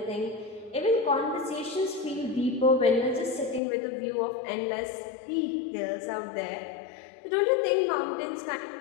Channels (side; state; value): right; drops out; at 3.6 s